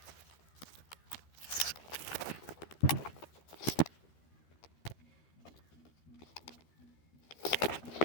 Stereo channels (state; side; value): late; right; 13 ms